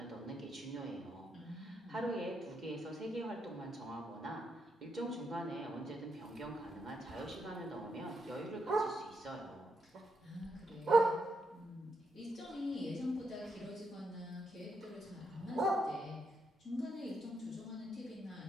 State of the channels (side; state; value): both; normal; correlation 0.81